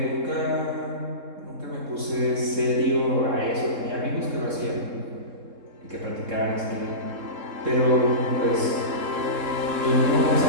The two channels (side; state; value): left; late; 3.7 ms